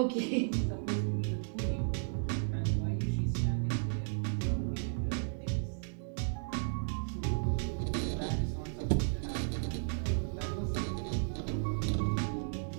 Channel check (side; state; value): left; silent; digital silence